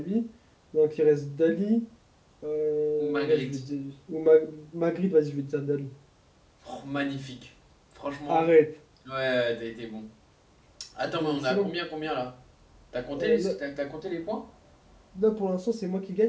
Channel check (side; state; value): both; identical; correlation 1.00